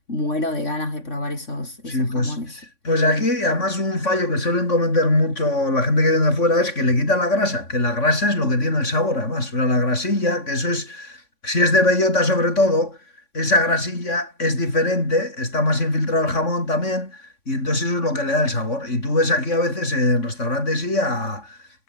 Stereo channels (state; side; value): late; right; 3.6 ms